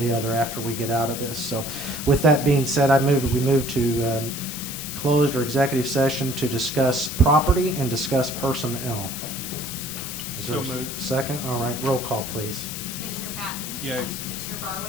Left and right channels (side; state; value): left; noise; hiss, 7 dB below the sound